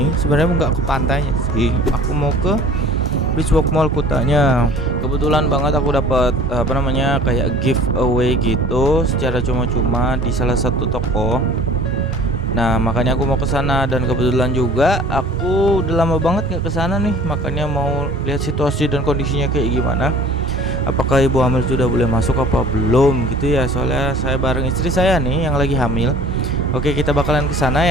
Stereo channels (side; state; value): both; normal; correlation 0.49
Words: Sebenarnya nggak ke pantainya sih, aku mau ke Beachwalk Mall Kutanya. Kebetulan banget aku dapat kayak giveaway gitu secara cuma-cuma di salah satu toko. Nah, makanya aku mau ke sana, dan kebetulan juga aku udah lama banget nggak ke sana nih. Makanya mau lihat situasi dan kondisinya kayak gimana. Apakah ibu hamil sudah boleh masuk apa belum gitu ya. Soalnya saya bareng istri saya nih yang lagi hamil. Oke, kita bakalan ke sana